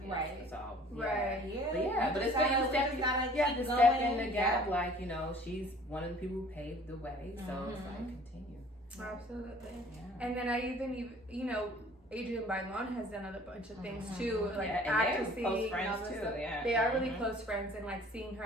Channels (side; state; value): both; normal; correlation 0.51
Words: Right. So Yeah. But it's good. You have to step in the gap. Like she's one of the people who paved the way. So it's like continue. Absolutely. Yeah. And then I even Adrian Bailon has done a bunch of things too, like and acting, they're close friends too. stuff. Yeah. They are really close friends, and like seeing her